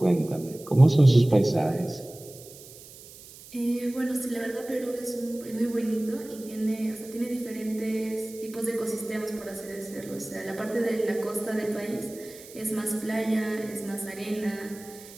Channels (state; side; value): noise; right; hiss, 18 dB below the sound